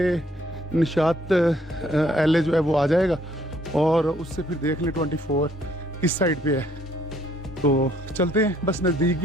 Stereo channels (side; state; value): both; normal; correlation 0.65